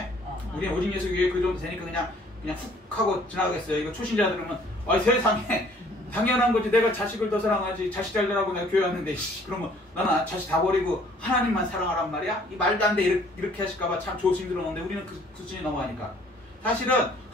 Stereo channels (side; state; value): both; normal; correlation 0.58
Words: 우리는 오직 예수 교회 그 정도 되니까 그냥 훅 하고 지나가겠어요. 이거 초신자 들으면 세상에 당연한 거지. 내가 자식을 더 사랑하지. 자식 잘 되라고 내가 교회 왔는데 그러면 나는 자식 다 버리고 하나님만 사랑하란 말이야? 이 말도 안 돼. 이렇게 하실까봐 참 조심 들었는데 우리는 그 수준이 넘어가니까 사실은